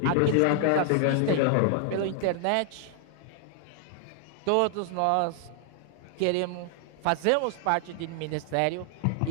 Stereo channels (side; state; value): both; different; correlation 0.00